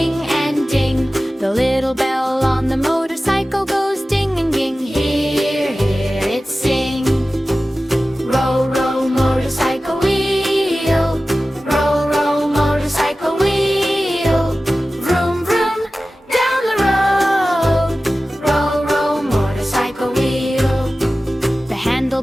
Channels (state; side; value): normal; both; correlation 0.95